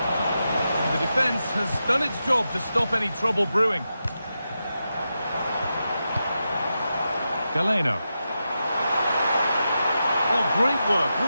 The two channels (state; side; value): inverted; both; correlation -0.89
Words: And the defence has done its job to stop any trouble brewing. Galeno. Oh, great work.